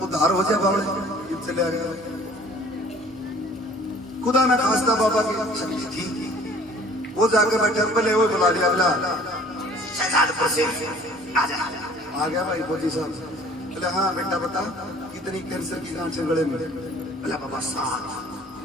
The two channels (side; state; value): both; normal; correlation 0.52